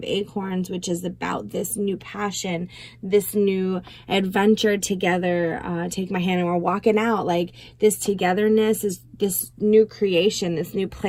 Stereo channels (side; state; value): both; identical; correlation 1.00